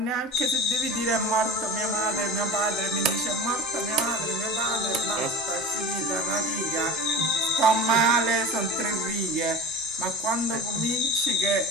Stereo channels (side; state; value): both; normal; correlation 0.33